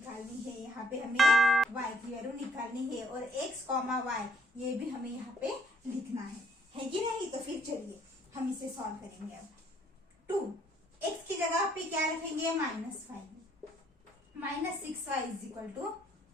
है। यहाँ पे हमें y की वैल्यू निकालनी है, और x, y ये भी हमें यहाँ पे लिखना है कि नहीं। तो फिर चलिए हम इसे सॉल्व करेंगे। अब 2x की जगह पे क्या रखेंगे? -5, -6y =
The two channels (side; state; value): both; normal; correlation 0.70